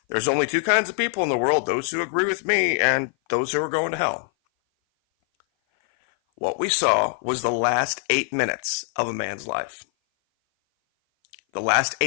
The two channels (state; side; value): silent; right; 57 dB below the other